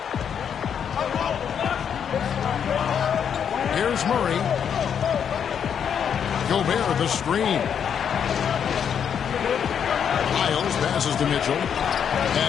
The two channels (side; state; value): right; quieter; 7.9 dB